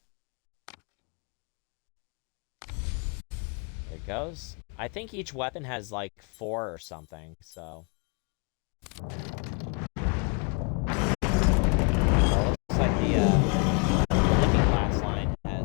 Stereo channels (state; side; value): quieter; right; 34.7 dB